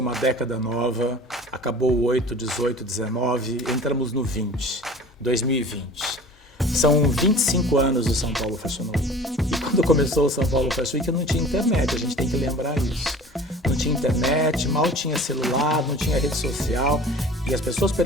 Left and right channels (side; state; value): both; normal; correlation 0.43